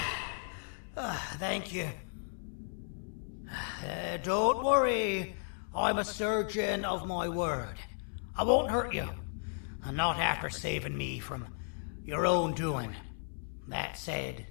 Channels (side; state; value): right; silent; 55 dB below the other